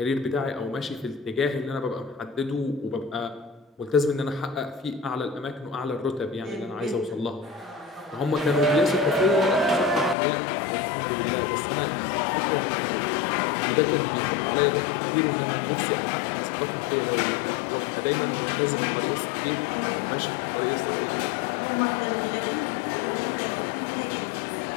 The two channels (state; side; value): drops out; right; at 10.2 s